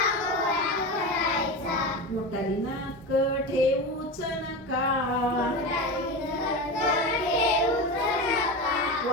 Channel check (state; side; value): normal; both; correlation 0.23